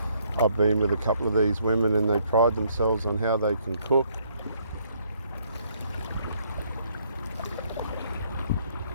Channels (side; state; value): both; inverted; correlation -0.68